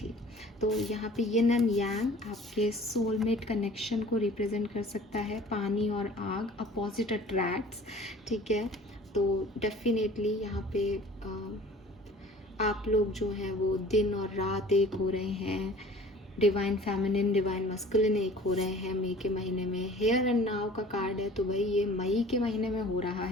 तो यहाँ पे यिन एंड यांग आपके सोलमेट कनेक्शन को रिप्रेजेंट कर सकता है। पानी और आग, अपोजिट अट्रैक्ट्स, ठीक है। तो डेफिनेटली यहाँ पे आप लोग जो हैं वो दिन और रात एक हो रहे हैं, डिवाइन फेमिनिन डिवाइन मस्कुलिन एक हो रहे हैं मई के महीने में। हेयर एंड नाव का कार्ड है, तो भाई ये मई के महीने में हो रहा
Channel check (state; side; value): normal; both; correlation 0.47